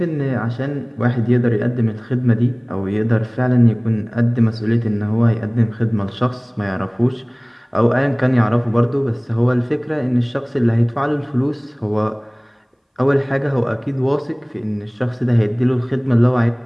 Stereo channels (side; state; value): both; identical; correlation 1.00